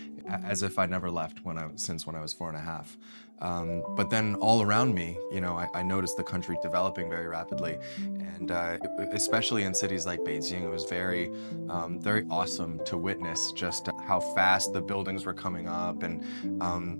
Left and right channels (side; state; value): both; inverted; correlation -1.00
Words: as if I never left since when I was 4.5. But then all around me, I noticed the country developing very rapidly, and especially in cities like Beijing, it was very awesome to witness just how fast the buildings were coming up and